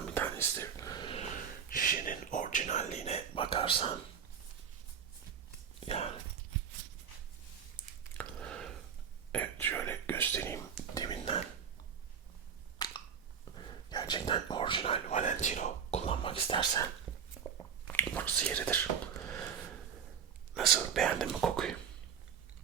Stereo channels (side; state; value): left; quieter; 7.3 dB